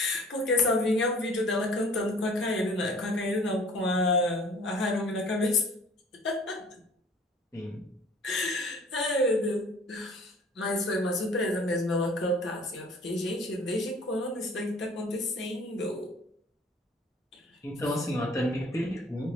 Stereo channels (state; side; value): normal; both; correlation 0.51